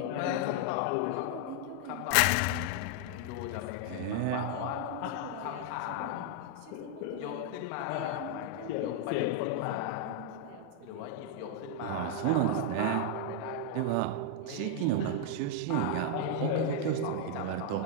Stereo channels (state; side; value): different; both; correlation 0.00